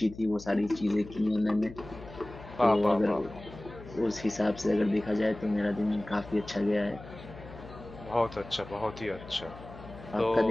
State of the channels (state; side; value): noise; left; hum, 16 dB below the sound